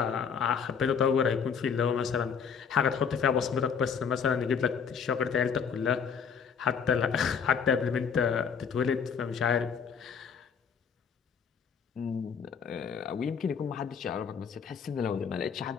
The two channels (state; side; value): quieter; right; 6.6 dB